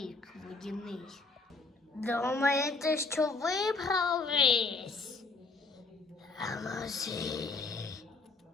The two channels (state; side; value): quieter; right; 3.8 dB